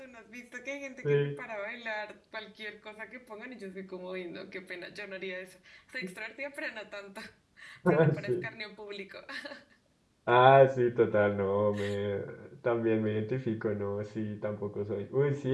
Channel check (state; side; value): identical; both; correlation 1.00